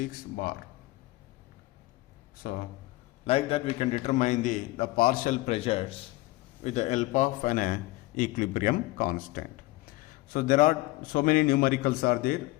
bar. So like that we can determine the partial pressures with the help of an equilibrium constant. So there are so many numericals are there.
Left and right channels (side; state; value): right; quieter; 19.5 dB